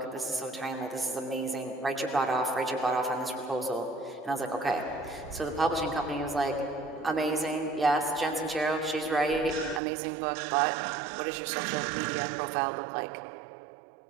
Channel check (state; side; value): drops out; left; at 9.8 s